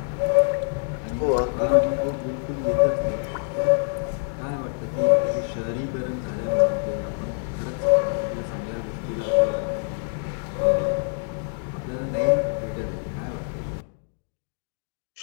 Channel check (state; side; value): silent; right; 59 dB below the other